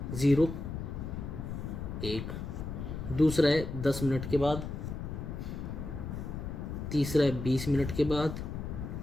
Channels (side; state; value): left; noise; rumble, 6 dB below the sound